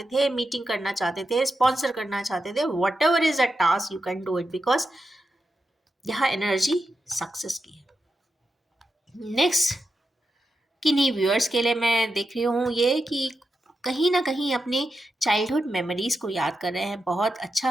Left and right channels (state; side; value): normal; both; correlation 0.88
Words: थे, मीटिंग करना चाहते थे, स्पॉन्सर करना चाहते थे, what ever is a task you can do it, because यहाँ एनर्जी सक्सेस की है। नेक्स्ट, किन्हीं व्यूअर्स के लिए मैं देख रही हूँ ये कि कहीं ना कहीं अपने चाइल्डहुड मेमोरीज को याद कर रहे हैं। बहुत अच्छा